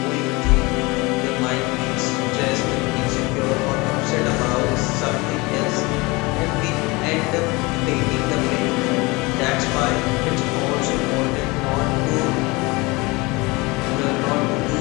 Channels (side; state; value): right; quieter; 24.4 dB